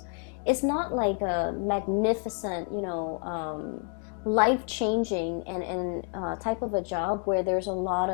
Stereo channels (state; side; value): quieter; right; 37.1 dB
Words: it's not like a magnificent, life-changing and type of a job where there's a lot